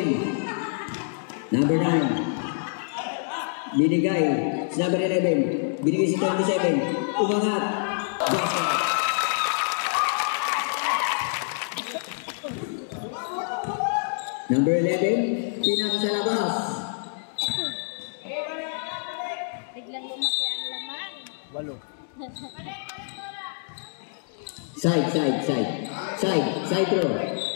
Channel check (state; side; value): silent; right; digital silence